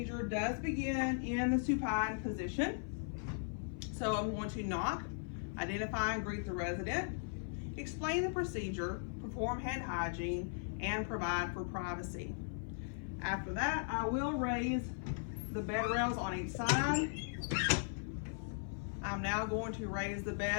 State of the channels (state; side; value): silent; right; 52 dB below the other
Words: does begin in the supine position. So I'm going to knock, identify and greet the resident, explain the procedure, perform hand hygiene, and provide for privacy. After that, I will raise the bed rails on each side. I'm now going to raise the